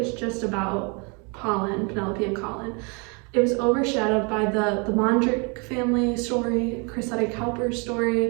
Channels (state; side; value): quieter; left; 33.0 dB